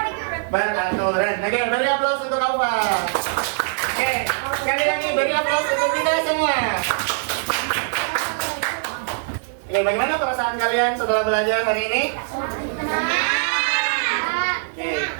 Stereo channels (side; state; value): left; silent; 64 dB below the other